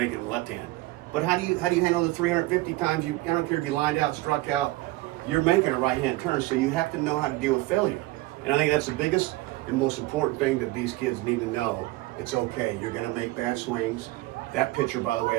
the left hand, but how do you handle the 350 times? I don't care if you lined out, struck out. You're making a right-hand turn, so you have to know how to deal with failure. And I think that's the biggest and most important thing that these kids need to know. It's okay. You're going to make bad swings. That pitcher, by the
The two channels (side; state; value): left; quieter; 19.6 dB